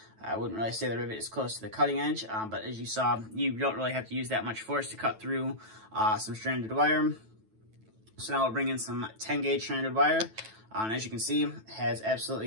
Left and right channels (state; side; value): late; left; 9.2 ms